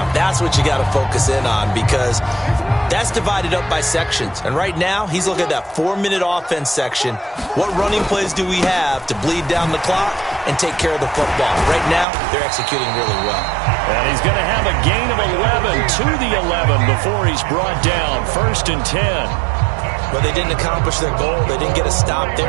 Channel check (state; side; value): drops out; left; at 12.1 s